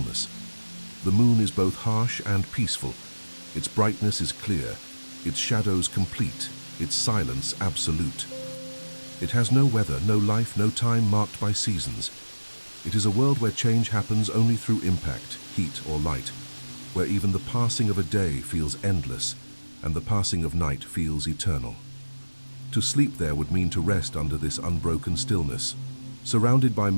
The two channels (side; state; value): both; inverted; correlation -1.00